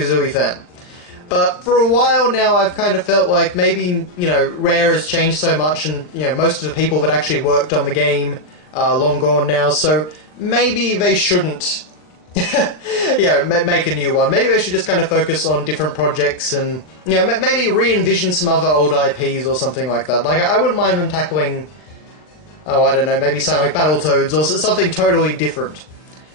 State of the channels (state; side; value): late; right; 40 ms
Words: fan. But for a while now, I've kind of felt like maybe, Rare has changed so much and, most of the people that actually worked on the game are long gone now, so maybe they shouldn't, make a new one. Maybe they should just kind of focus on different projects and, maybe re-envision some other old IPs or something like that. Like, I wouldn't mind them tackling, I don't know, maybe something like Battletoads or something totally different.